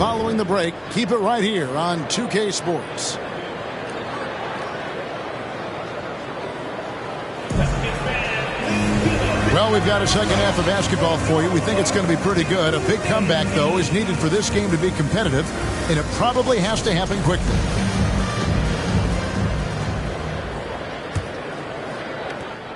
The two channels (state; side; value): identical; both; correlation 1.00